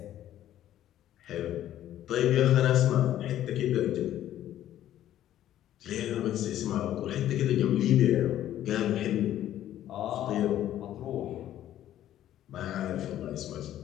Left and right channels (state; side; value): quieter; right; 12.2 dB